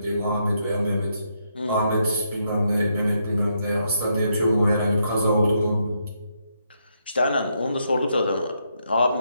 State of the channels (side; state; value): both; inverted; correlation -0.78